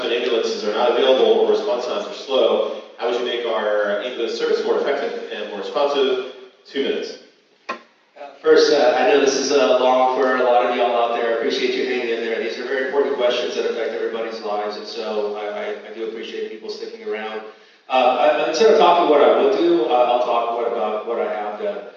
when ambulances are not available or response times are slow. How would you make our ambulance service more effective and more responsive? 2 minutes. First, I know this is long for a lot of y'all out there. I appreciate you hanging in there. These are very important questions that affect everybody's lives, and so I do appreciate people sticking around. Instead of talking what I would do, I'll talk about what I have done.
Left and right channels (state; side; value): identical; both; correlation 1.00